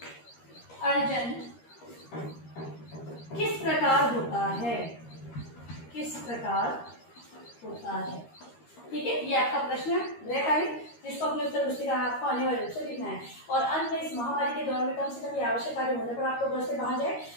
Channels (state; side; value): late; right; 13 ms